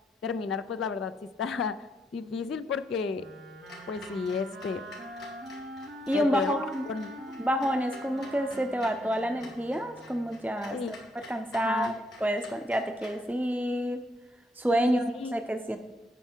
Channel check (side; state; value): both; normal; correlation 0.75